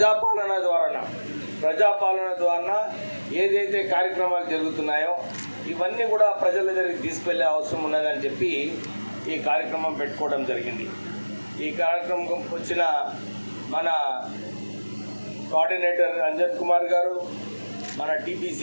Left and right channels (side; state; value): both; inverted; correlation -1.00